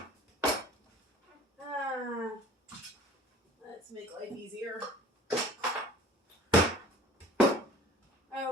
Let's make life easier.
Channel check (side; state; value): both; normal; correlation 0.48